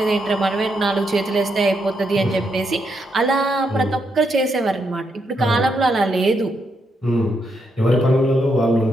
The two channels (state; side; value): normal; both; correlation 0.79